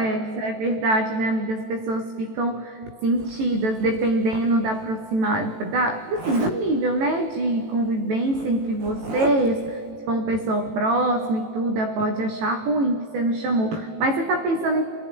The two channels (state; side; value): late; left; 18 ms